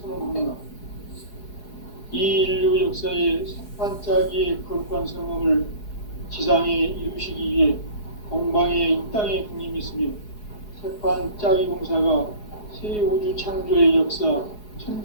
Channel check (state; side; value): late; right; 4.8 ms